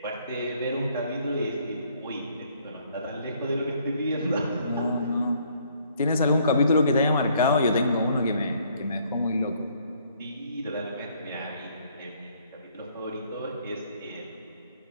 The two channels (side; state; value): both; inverted; correlation -0.64